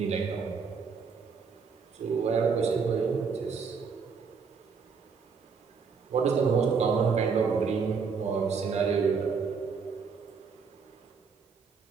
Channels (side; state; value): left; quieter; 5.5 dB